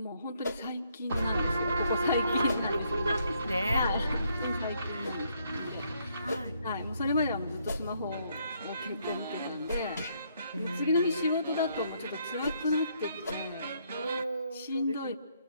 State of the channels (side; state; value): both; inverted; correlation -0.71